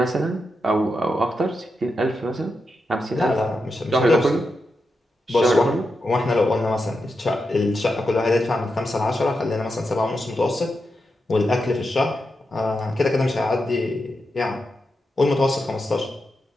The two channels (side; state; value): both; normal; correlation 0.87